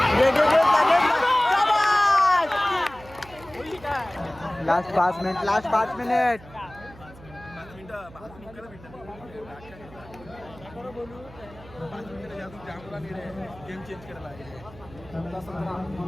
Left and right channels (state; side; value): noise; right; hum, 20 dB below the sound